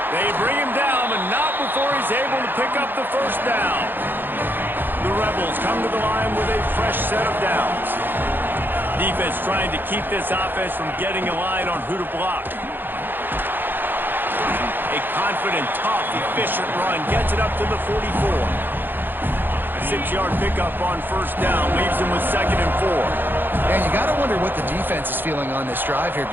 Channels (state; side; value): late; left; 0.095 ms